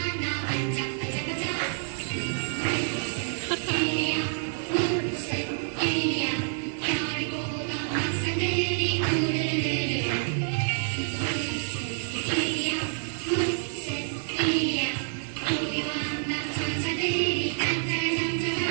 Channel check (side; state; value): left; silent; digital silence